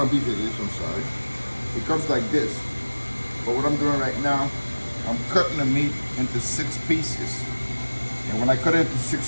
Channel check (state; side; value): inverted; both; correlation -1.00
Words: beef it is, I'm sorry. It comes like this. But what I'm doing right now, I'm cutting the meat into 6 pieces. And when I cut it into 6